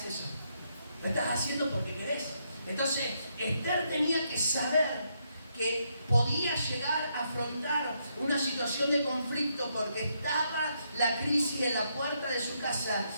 eso. Lo estás haciendo porque querés. Entonces, Esther tenía que saber que podía llegar a afrontar una situación de conflicto porque estaba la crisis en la puerta de su casa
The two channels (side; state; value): both; inverted; correlation -0.77